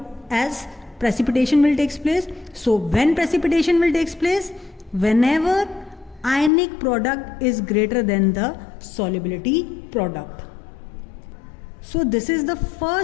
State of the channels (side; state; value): right; drops out; at 6.5 s